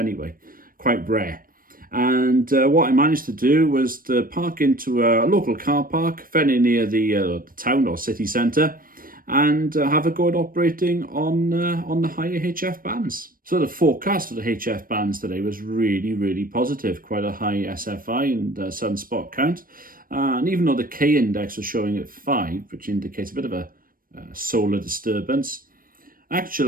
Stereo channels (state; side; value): late; left; 0.41 ms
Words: quite rare. And what I managed to do was to park into a local car park very near the town or city centre and have a go at operating on the higher HF bands. So the forecast for the HF bands today was really positive, quite a high SFI and sunspot count. And even though the K index was showing at 5, which indicates a bit of a solar disturbance,